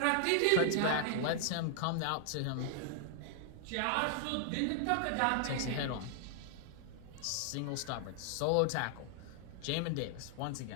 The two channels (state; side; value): different; both; correlation 0.00